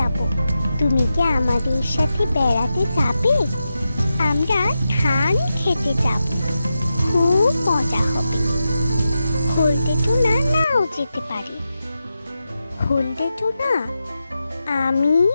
তুমি কি আমাদের সাথে বেড়াতে যাবে? আমরা ধান খেতে যাব, খুব মজা হবে। হলদে টোনা নাও যেতে পারে। হলদে টোনা, আমি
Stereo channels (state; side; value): inverted; both; correlation -0.90